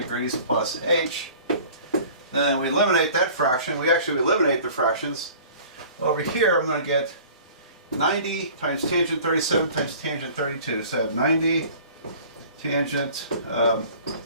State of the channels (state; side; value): inverted; both; correlation -0.46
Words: plus h, then we eliminate that fraction. We actually eliminate the fractions. Over here I'm going to get 90 times tangent 37 times tangent 32. So I have 90 tangent,